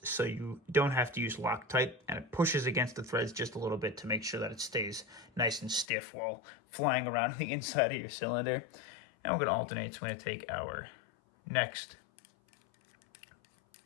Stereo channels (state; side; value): drops out; right; at 5.9 s